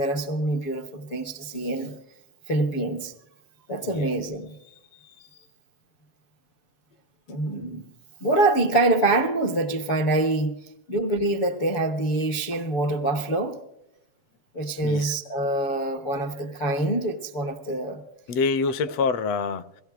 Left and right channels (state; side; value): late; right; 7.0 ms